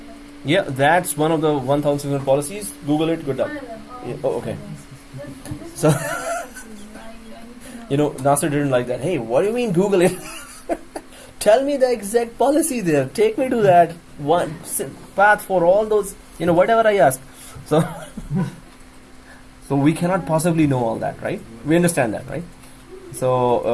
like, Yeah, that's one of the 1,600 policies. Google it. Good luck. one of them. Yeah, oh, okay. This So- is references. I need to know. You know, Nasser didn't like that. Hey, what do you mean Google it? Tell me the exact policy there. Take me to that one path for all those. You know, whatever I ask. So, so we cannot possibly know all that, right? We understand that, right?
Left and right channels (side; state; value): both; identical; correlation 1.00